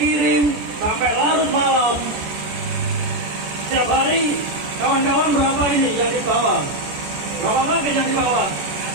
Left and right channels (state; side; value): late; left; 14 ms